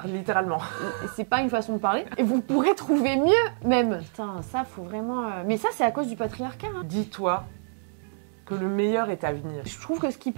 littéralement. Et c'est pas une façon de parler. Et vous pourrez trouver mieux, même. Putain, ça, faut vraiment... Mais ça, c'est à cause du patriarcat. Hein. Dis-toi que le meilleur est à venir. Je trouve que ce qui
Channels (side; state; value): left; silent; 60 dB below the other